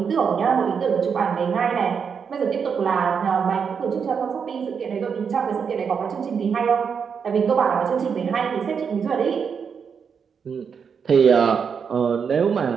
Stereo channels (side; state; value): left; quieter; 6.5 dB